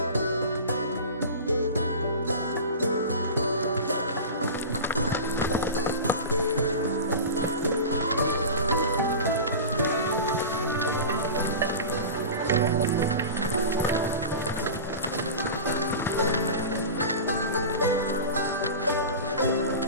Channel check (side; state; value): both; inverted; correlation -0.30